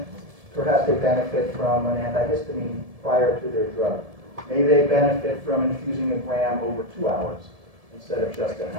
perhaps they benefit from an antihistamine prior to their drug. Maybe they benefit from infusing a gram over 2 hours instead of just an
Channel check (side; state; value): left; late; 1.7 ms